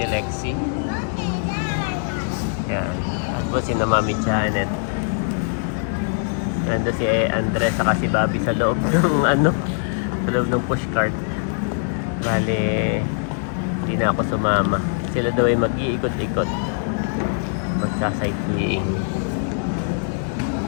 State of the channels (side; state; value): right; silent; digital silence